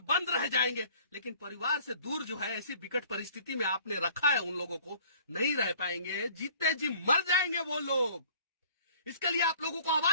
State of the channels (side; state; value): both; inverted; correlation -0.53